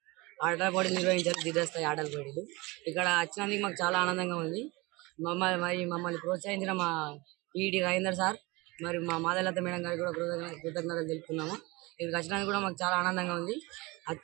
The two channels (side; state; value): left; quieter; 23.8 dB